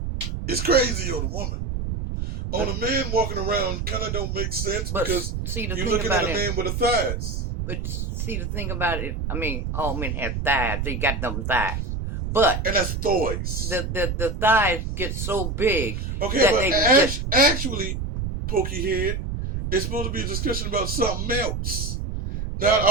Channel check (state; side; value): noise; right; rumble, 3 dB below the sound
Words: is crazy on a woman. On a man walking around kind of don't make sense because you're looking at a man with the thighs. But see, the thing about it, all men have thighs. They got them thighs. And that's thighs. The thighs get so big. Okay, that but actually, Pokey Head, it's supposed to be a discussion about something else. Not